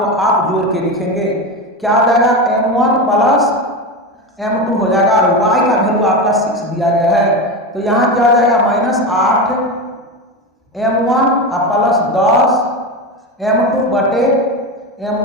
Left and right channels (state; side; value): normal; both; correlation 0.20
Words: आप जोड़ के लिखेंगे, क्या हो जाएगा m1 प्लस m2 हो जाएगा और y का वैल्यू आपका 6 दिया गया है तो यहाँ क्या हो जाएगा -8m1 प्लस 10m2 बटे